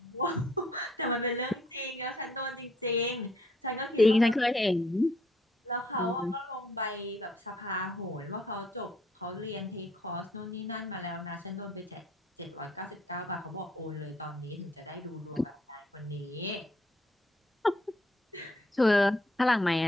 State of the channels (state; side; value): normal; both; correlation 0.65